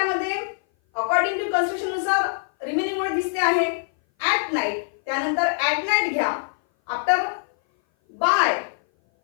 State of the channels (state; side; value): silent; right; 58 dB below the other